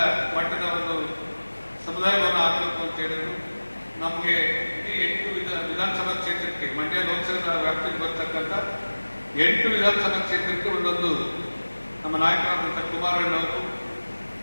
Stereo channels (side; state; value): both; inverted; correlation -1.00